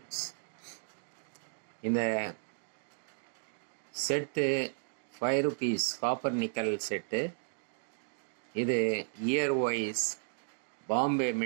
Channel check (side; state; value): left; silent; digital silence